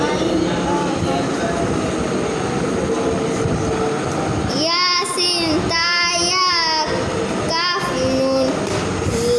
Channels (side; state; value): both; identical; correlation 1.00